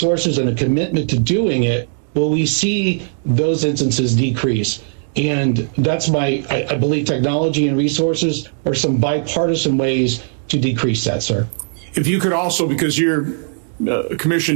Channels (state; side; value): silent; left; digital silence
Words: and a commitment to doing it will we see those instances decrease. And that's I believe technology and resources are some bipartisan ways to decrease that, sir. If you could also, because your